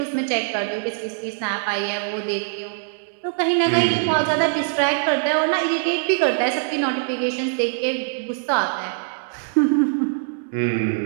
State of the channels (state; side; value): silent; left; 63 dB below the other